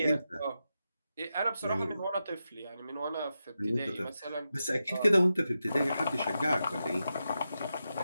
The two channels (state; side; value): inverted; both; correlation -0.89